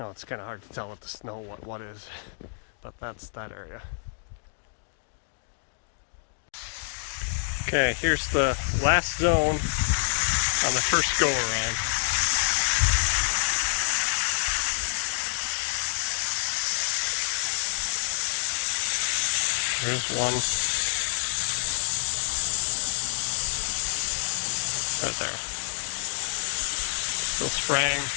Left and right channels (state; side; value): silent; right; digital silence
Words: it's kind of hard to tell with the snow what is, but that's that area. Okay, here's the last zone on the first go around. There's one. Right there. Still spraying.